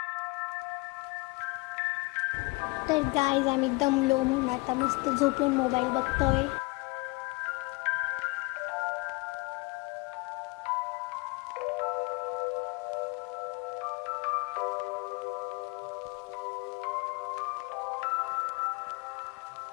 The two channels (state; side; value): quieter; right; 26.8 dB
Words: तर गाईज आम्ही दमलो म्हणून आता मस्त झोपून मोबाईल बघतोय.